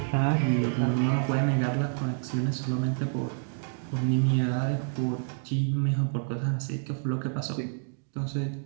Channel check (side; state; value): left; silent; digital silence